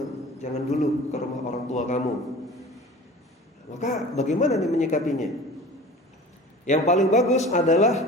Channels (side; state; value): both; normal; correlation 0.40